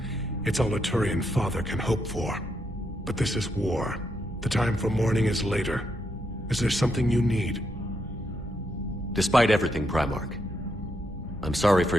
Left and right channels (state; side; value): normal; both; correlation 0.80